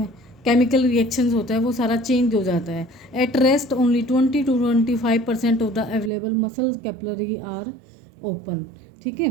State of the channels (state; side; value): drops out; left; at 6.1 s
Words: केमिकल रिएक्शंस होता है वो सारा चेंज हो जाता है। At rest only 20 to 25% of the available muscle capillary are open. ठीक